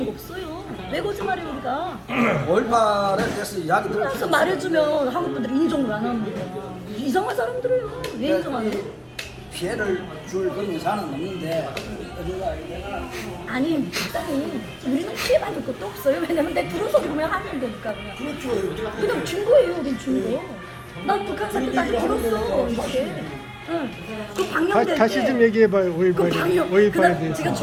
거 없어요. 왜 거짓말해 우리가? 5.18에 대해서 이야기 그래서 들었어요. 말해주면 한국 분들이 인정을 안 하는 거야. 이상한 사람들이에요. 왜 인정하는 거야? 피해를 줄 그런 의사는 없는데 아니, 일단은 우리는 피해받을 것도 없어요. 왜냐면 내 들어서 보면 하는 거니까 그냥. 그냥 준 거예요, 우린 준 거. 난 북한 사람 나한테 들었어, 이렇게. 응. 그 방영될 다시 때 좀 얘기해봐요. 그 방영, 5.18에 그다음 대해서. 제가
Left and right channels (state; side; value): identical; both; correlation 1.00